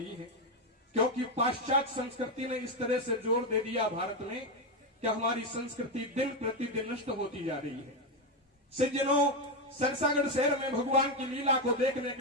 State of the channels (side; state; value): both; normal; correlation 0.09